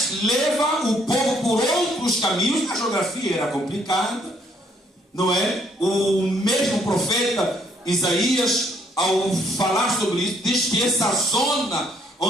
leva o povo por outros caminhos. A geografia era complicada, não é? O mesmo profeta Isaías, ao falar sobre isso, diz que essa zona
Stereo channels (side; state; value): both; normal; correlation 0.67